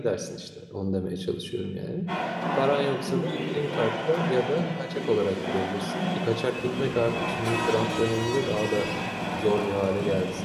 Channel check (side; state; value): both; identical; correlation 1.00